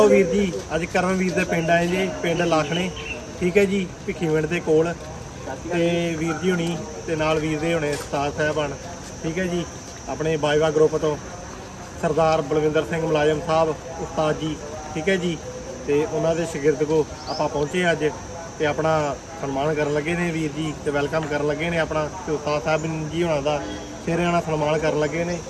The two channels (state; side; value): identical; both; correlation 1.00